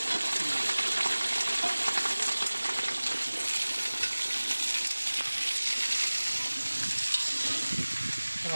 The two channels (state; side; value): inverted; both; correlation -1.00